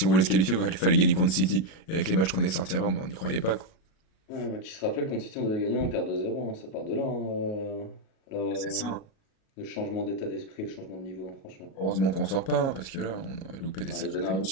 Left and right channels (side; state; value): right; late; 37 ms